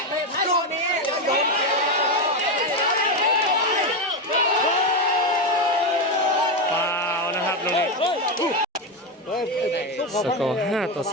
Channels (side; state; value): both; normal; correlation 0.11